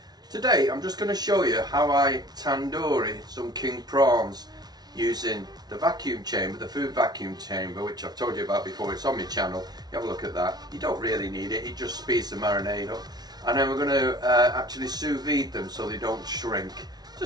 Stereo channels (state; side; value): late; left; 0.19 ms